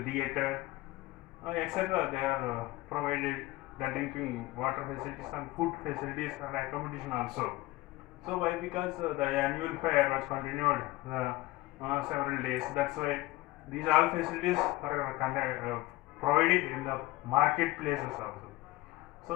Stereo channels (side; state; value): right; quieter; 19.0 dB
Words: theater, etc. They are provided the drinking water facilities and food facilities and accommodation also. So why? Because the annual fair was continued several days. That's why these all facilities are provided in the marketplaces also. So